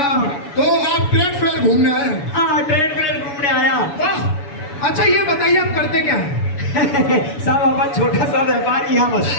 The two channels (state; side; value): late; right; 7.0 ms